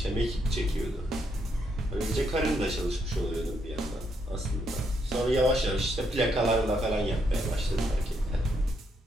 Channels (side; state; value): both; normal; correlation 0.76